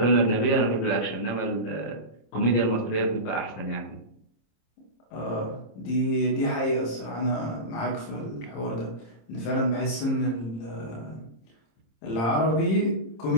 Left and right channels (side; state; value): right; late; 26 ms